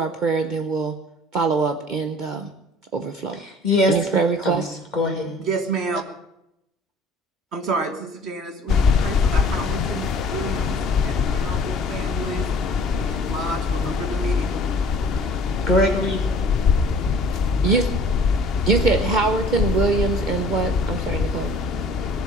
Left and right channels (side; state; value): both; normal; correlation 0.50